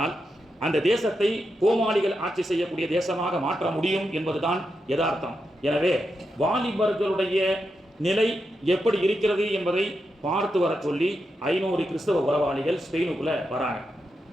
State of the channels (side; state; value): both; normal; correlation 0.86